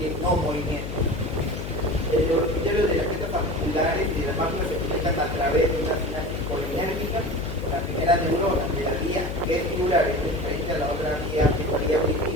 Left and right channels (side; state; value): left; noise; hum, 6 dB below the sound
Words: no movimiento. Los criterios de las piezas articulares y de las máquinas se conectan a través de una sinapsis colinérgica con la primera neurona de la vía vestibular, es diferente a la otra vía